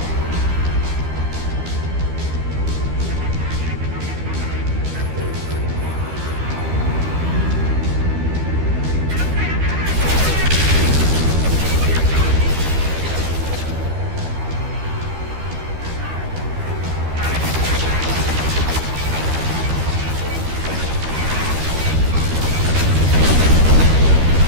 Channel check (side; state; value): left; late; 13 ms